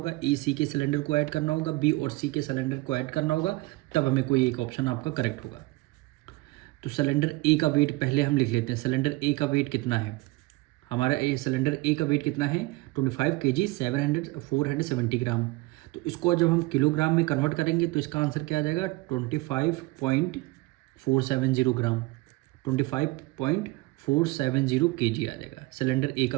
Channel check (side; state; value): left; quieter; 21.6 dB